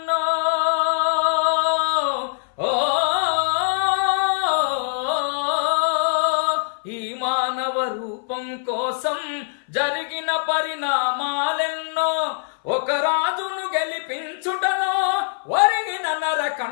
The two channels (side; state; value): right; silent; 58 dB below the other